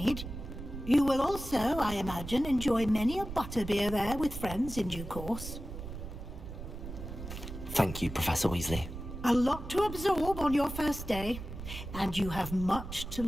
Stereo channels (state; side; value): noise; right; rumble, 9 dB below the sound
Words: You will also, I imagine, enjoy many a butterbeer there with friends in due course. Thank you, Professor Weasley. A lot to absorb on your first day, and you have much to